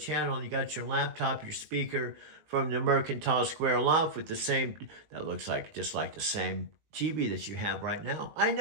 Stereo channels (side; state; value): left; late; 19 ms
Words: You got your laptop, your speaker from the Mercantile Square loft with the same, that looks like just like the same TV that you have right now. I